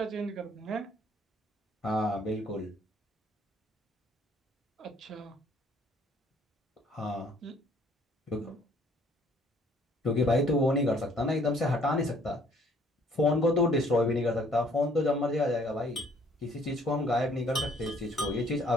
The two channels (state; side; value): normal; both; correlation 0.61